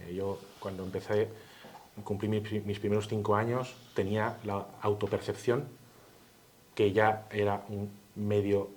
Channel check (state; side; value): identical; both; correlation 1.00